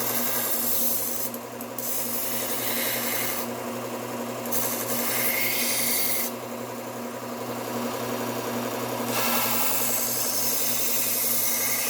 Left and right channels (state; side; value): identical; both; correlation 1.00